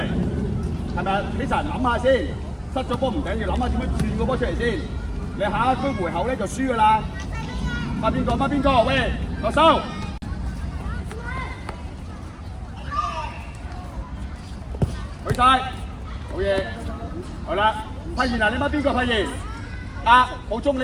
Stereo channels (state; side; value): identical; both; correlation 1.00